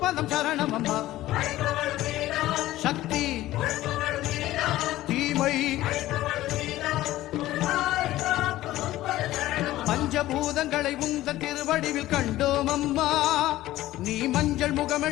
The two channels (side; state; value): right; quieter; 15.6 dB